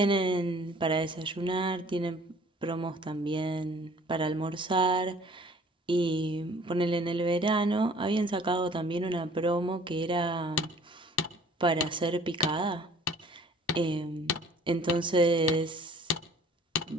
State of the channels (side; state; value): both; normal; correlation 0.52